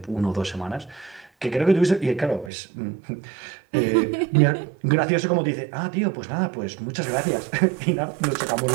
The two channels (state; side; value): drops out; left; at 2.5 s